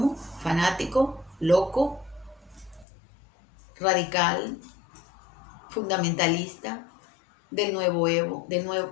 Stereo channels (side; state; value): right; drops out; at 2.9 s